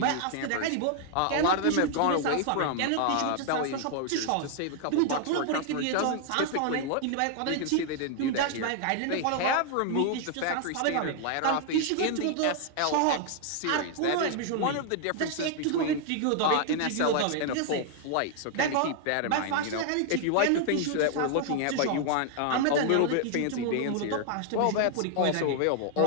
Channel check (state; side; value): different; both; correlation 0.00